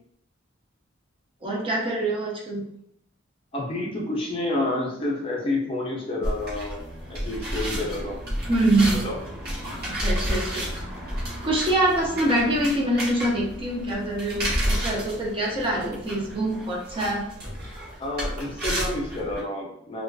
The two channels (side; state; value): both; normal; correlation 0.55